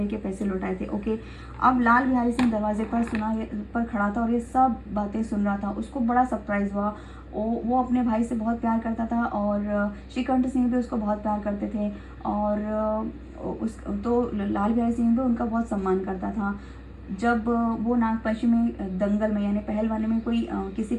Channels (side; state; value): both; identical; correlation 1.00